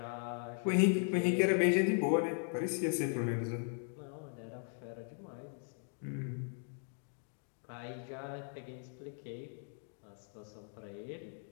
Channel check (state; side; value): silent; right; 52 dB below the other